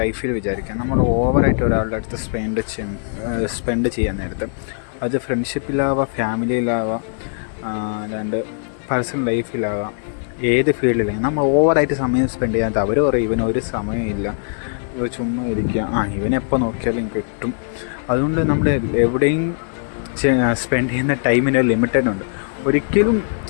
വിചാരിക്കാം നമ്മൾ ഓവറായിട്ട് ഒരാളുടെ അടുത്ത് സ്പെൻഡ് ചെയ്യാൻ നേരത്ത്, അത് ഫ്രണ്ട്ഷിപ്പിലാവാം, ഫാമിലിയിലാവാം, അല്ലാണ്ട് പേഴ്സണൽ ലൈഫിലാവാം, ഏത് ഫീൽഡിലും നമ്മൾ ഓവറായിട്ട് സമയം സ്പെൻഡ് ചെയ്യാത്ത അവർ പറയും ഇവനൊരു സമയമില്ല, ഇവ ചുമ്മാ ഇരിക്കുക, ഇവനെപ്പോൾ നോക്കിയാലും കിട്ടും. അതുകൊണ്ട് നമ്മൾ എവിടെയും സ്പെൻഡ് ചെയ്യുന്ന ടൈമിന് ലിമിറ്റഡ് ഉണ്ട്. ഒരിക്കലും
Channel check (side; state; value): right; silent; digital silence